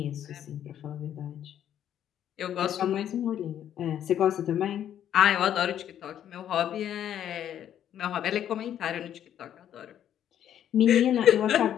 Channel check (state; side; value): quieter; right; 10.3 dB